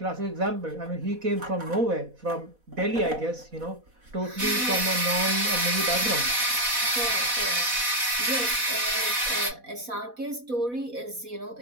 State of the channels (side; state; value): left; late; 4.1 ms